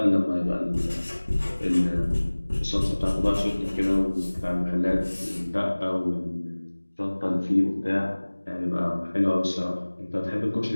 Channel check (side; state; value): both; inverted; correlation -1.00